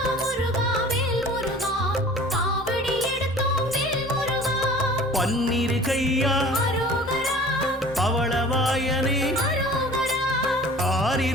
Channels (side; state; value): both; normal; correlation 0.45